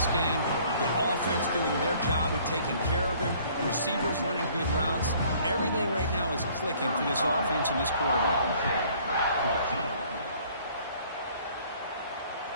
game, the offense doing their job of taking care of him, receivers running good routes. Everything right now is clicking for this offense and this quarterback.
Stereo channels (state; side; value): inverted; both; correlation -0.57